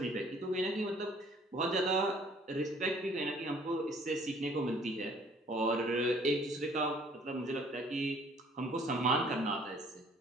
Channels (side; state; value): both; normal; correlation 0.57